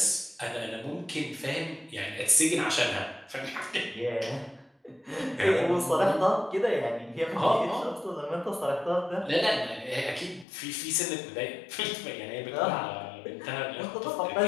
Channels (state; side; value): drops out; right; at 10.5 s